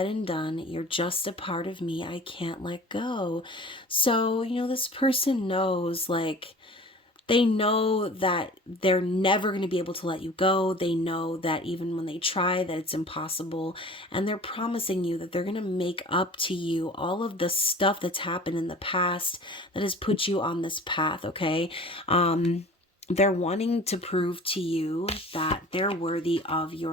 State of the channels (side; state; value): both; normal; correlation 0.43